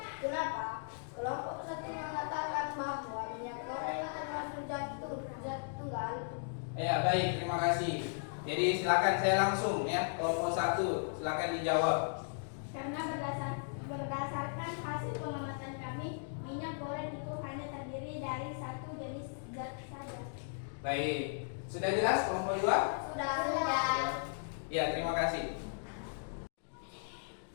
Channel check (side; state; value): right; silent; digital silence